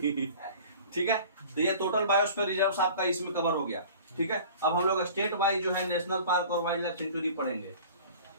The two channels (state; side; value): inverted; both; correlation -0.44